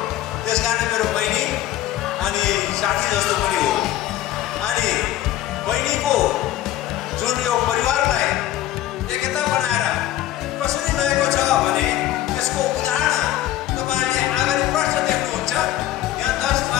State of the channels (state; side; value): quieter; right; 13.7 dB